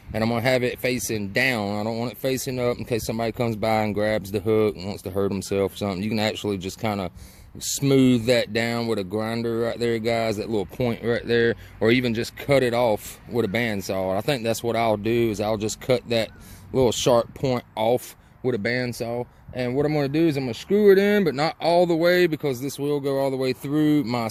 and I'm going to have it facing down. I don't want it facing up in case somebody comes by and grabs the hook and wants to hurt himself or something. You can actually just kind of smooth that down with a grinder right there, guys, that little point right there, or even just cut it off with a bandsaw. I think that's what I'll do, is I'll just cut that little sharp point off with a bandsaw. And what I'm going to do is I'm going to screw it in, but not all the way, because this will go all the way through my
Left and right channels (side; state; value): both; identical; correlation 1.00